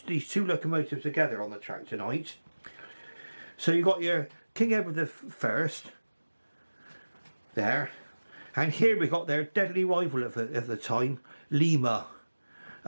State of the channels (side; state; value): both; inverted; correlation -1.00